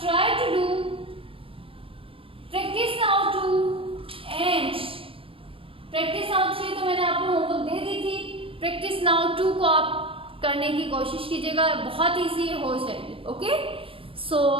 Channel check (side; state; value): left; late; 0.26 ms